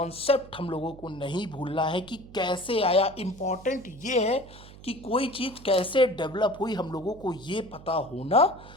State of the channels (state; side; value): noise; right; hum, 18 dB below the sound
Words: हम लोगों को नहीं भूलना है कि कैसे आया। इंपॉर्टेंट ये है कि कोई चीज कैसे डेवलप हुई, हम लोगों को ये पता होना